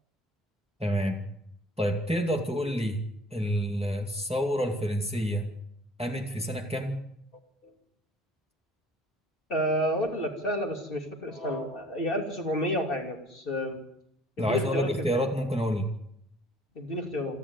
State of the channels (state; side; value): normal; both; correlation 0.53